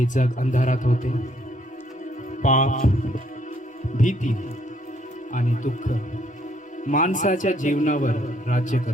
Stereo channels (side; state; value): both; normal; correlation 0.68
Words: जग अंधारात होते. पाप, भीती आणि दुःख माणसाच्या जीवनावर राज्य